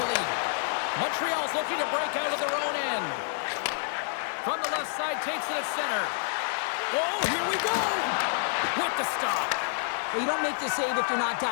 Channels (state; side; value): silent; right; digital silence